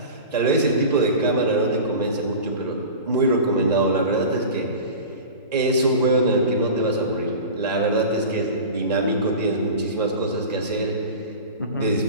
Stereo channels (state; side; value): inverted; both; correlation -0.34